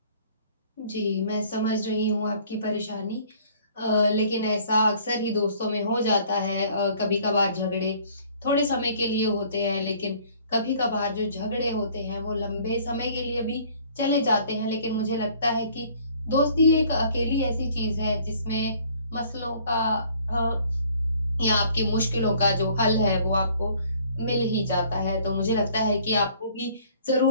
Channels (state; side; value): inverted; both; correlation -0.56